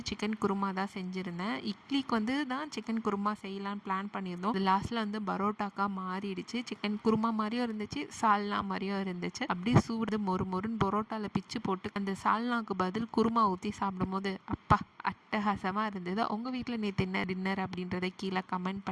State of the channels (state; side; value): identical; both; correlation 1.00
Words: சிக்கன் குருமா தான் செஞ்சுருந்தேன். இட்லிக்கு வந்து தான் சிக்கன் குருமா செய்யலான்னு பிளான் பண்ணியிருந்தோம். அது லாஸ்ட்டில் வந்து பரோட்டாக்கா மாறிடுச்சு. சிக்கன் குருமா மாதிரியும் இருந்துச்சு, சால்னா மாதிரியும் இருந்துச்சு. அப்படியே சூடு மொறு மொறுன்னு பரோட்டாவில் பிச்சு போட்டு அந்த சால்னாக்கு பதில் குருமா ஊற்றி சாப்பிடும்போது அப்பா அட்டகாசமாக இருந்தது. உங்கள் வீட்டில் நேற்று என்ன டின்னர் அப்படின்றத கீழே கமெண்ட்